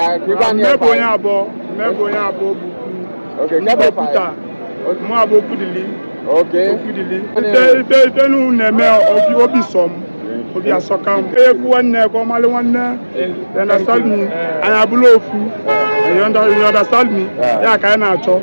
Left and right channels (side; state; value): both; inverted; correlation -1.00